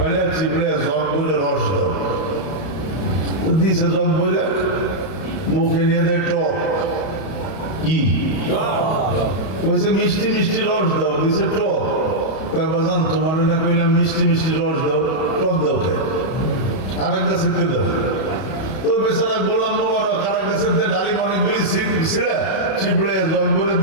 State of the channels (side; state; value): right; late; 31 ms